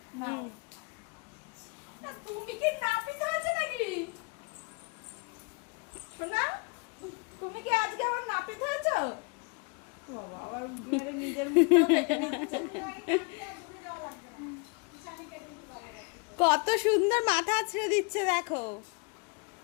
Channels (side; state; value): right; quieter; 32.5 dB